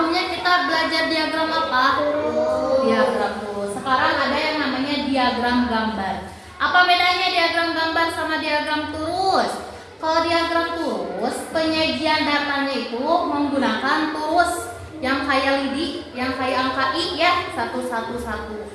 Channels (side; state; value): both; identical; correlation 1.00